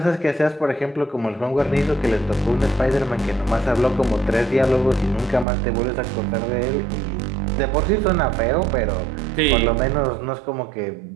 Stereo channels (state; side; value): drops out; left; at 5.5 s